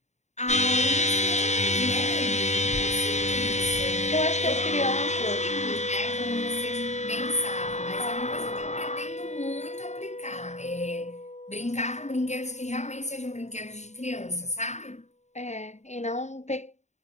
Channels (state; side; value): late; right; 0.33 ms